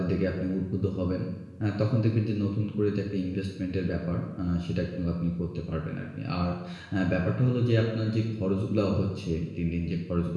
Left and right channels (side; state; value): both; identical; correlation 1.00